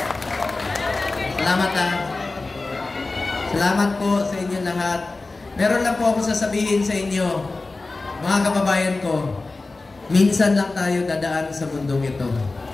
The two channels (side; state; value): right; quieter; 3.4 dB